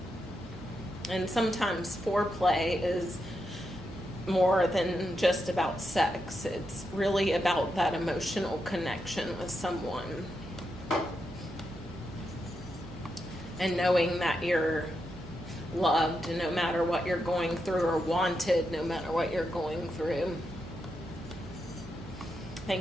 And sometimes foreplay is more than just about sex. It's really about that emotional connection with someone. And knowing that you're loved no matter what you're going through, or wanted no matter what you're going through.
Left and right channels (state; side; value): noise; right; hum, 16 dB below the sound